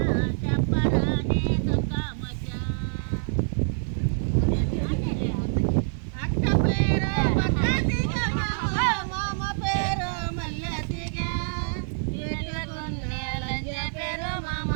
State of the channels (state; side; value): silent; left; 61 dB below the other